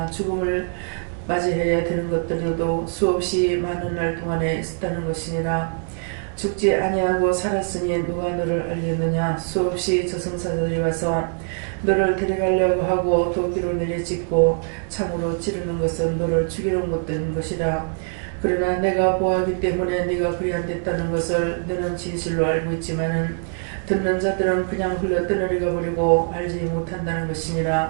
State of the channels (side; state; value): left; silent; 57 dB below the other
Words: 죽음을 맞이해야 되는 것들도 수없이 많은 날 동안에 있었다는 것이니라. 죽지 아니하고 살았으니 누가 너를 알겠느냐. 수없이 저승사자들이 와서 너를 데려가려고 하고 도끼로 내려찍고 창으로 찌르는 것은 너를 죽이려 못된 것이라. 그러나 내가 보았기 때문에 네가 그리 안 됐다는 것을 너는 진실로 알고 있지만은 듣는 자들은 그냥 흘러 떠내려가 버리고 알지 못한다는